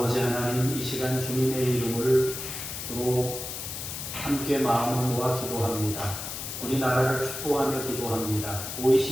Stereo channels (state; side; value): noise; left; hiss, 7 dB below the sound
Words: 하나님, 이 시간 주님의 이름으로 함께 마음을 모아 기도합니다. 우리나라를 축복하며 기도합니다.